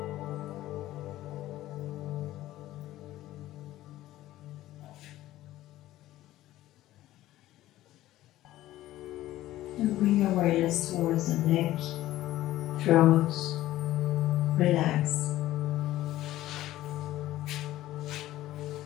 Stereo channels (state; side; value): quieter; right; 15.1 dB